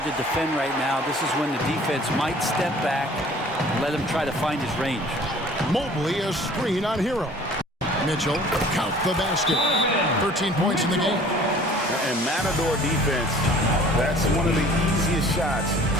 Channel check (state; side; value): normal; both; correlation 0.50